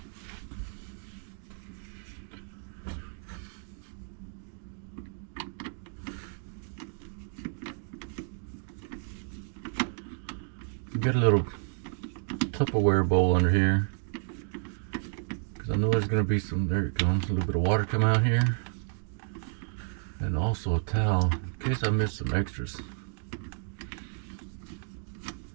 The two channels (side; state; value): left; silent; 57 dB below the other